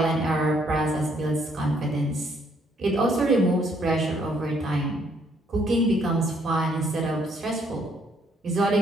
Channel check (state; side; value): normal; both; correlation 0.68